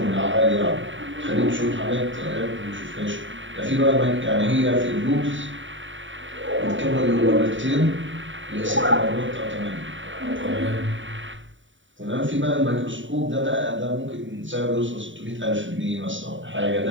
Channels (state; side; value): late; left; 0.55 ms